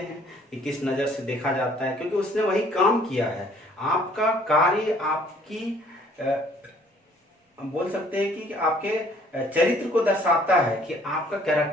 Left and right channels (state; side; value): normal; both; correlation 0.59